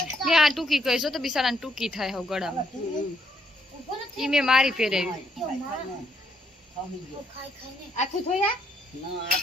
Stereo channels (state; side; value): normal; both; correlation 0.72